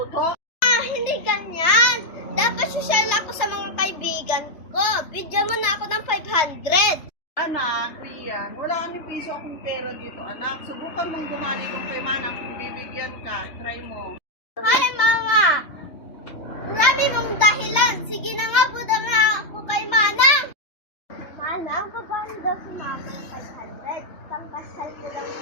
Hindi ganyan. Dapat social ako sa mga kaibigan ko. Bigyan mo na ako ng 500. Anak, Rian, wala ni piso akong pera dito, anak. Subukan mong bumali kung kay Manang kung bibigyan ka. Try mo. Ay, mama! Marami mong dahilan. Sige na nga, buda nga ako kay Manang. Manang, paano daw si mama ng 500? Pangkasal ko lang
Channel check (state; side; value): late; right; 3.3 ms